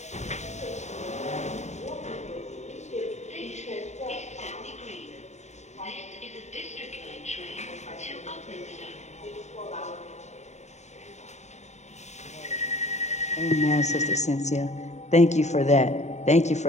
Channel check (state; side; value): late; right; 0.33 ms